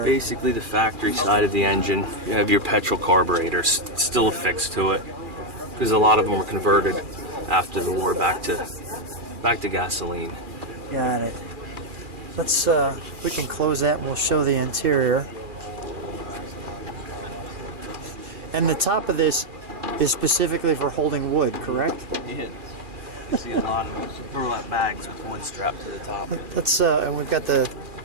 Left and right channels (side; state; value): left; late; 2.4 ms